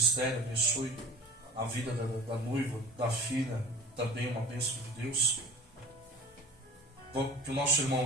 abençoe a vida da noiva, da filha, também uma bênção de Deus. Que o nosso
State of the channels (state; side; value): normal; both; correlation 0.41